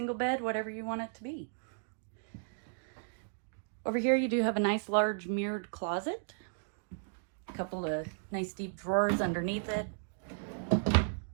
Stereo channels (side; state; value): left; silent; digital silence